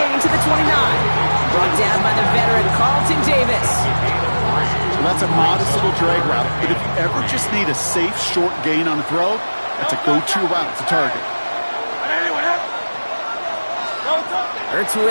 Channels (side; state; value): both; inverted; correlation -1.00